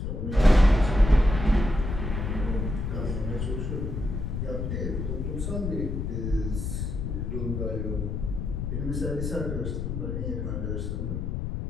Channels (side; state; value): left; noise; rumble, 3 dB below the sound